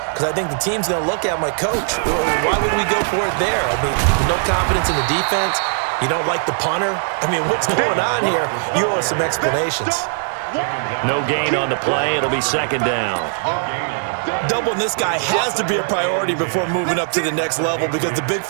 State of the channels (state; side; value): silent; left; 66 dB below the other